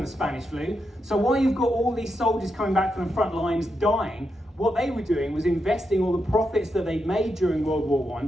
the Spanish flu. So while you've got all these soldiers coming back from the front lines dying, what they were doing was investing all the profits that they'd made during World War I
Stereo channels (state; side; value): normal; both; correlation 0.84